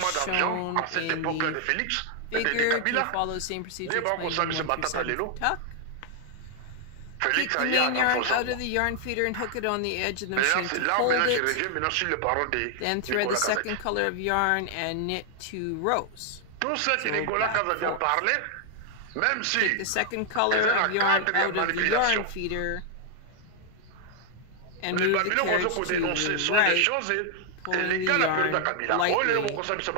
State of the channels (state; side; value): different; both; correlation 0.00